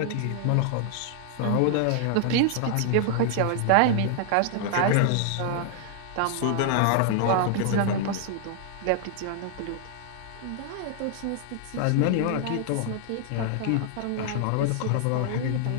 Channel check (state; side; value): different; both; correlation 0.00